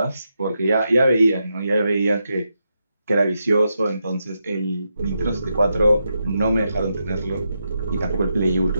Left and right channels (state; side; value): inverted; both; correlation -0.85